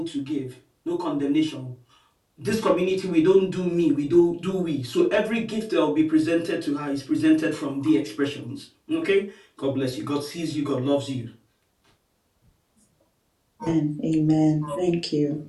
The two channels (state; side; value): identical; both; correlation 1.00